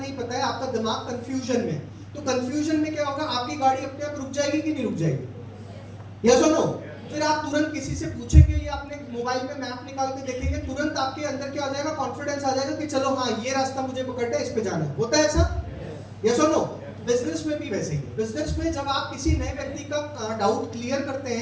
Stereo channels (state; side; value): identical; both; correlation 1.00